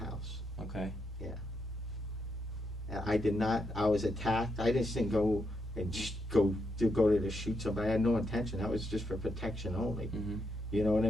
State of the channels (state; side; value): normal; both; correlation 0.81